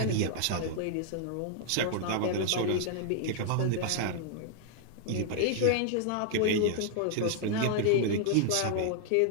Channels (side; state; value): both; different; correlation -0.01